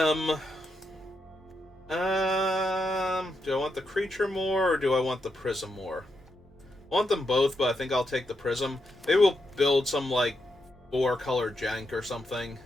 Do I want the creature more, or do I want the prism more? I want them both, but I think I'll take the prism. Maybe we'll build some, like, 4-color jank or something.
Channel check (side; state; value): both; normal; correlation 0.83